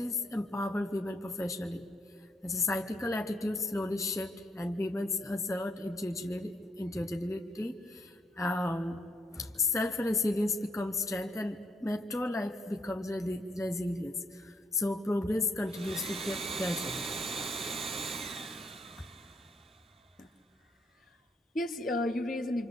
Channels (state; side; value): normal; both; correlation 0.74